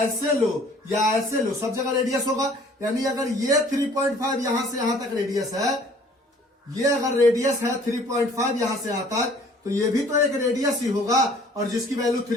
ऐसे लो या ऐसे लो, सब जगह रेडियस होगा, यानी अगर ये 3.5 यहां से यहां तक रेडियस है, ये अगर रेडियस है 3.5 यहां से यहां तक, तो ये भी तो एक रेडियस ही होगा और जिसकी वैल्यू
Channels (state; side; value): normal; both; correlation 0.55